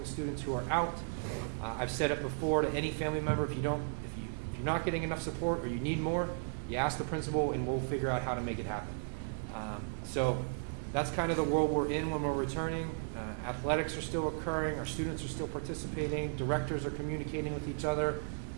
students who are out. I've said it before to any family member, if you're not getting enough support or you need more, you ask the principal and we'll figure out how to make it happen. So that's kind of the world we're in when we're returning. Athletics are still occurring. Our students are still participating. Directors are communicating with each other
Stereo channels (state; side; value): silent; left; digital silence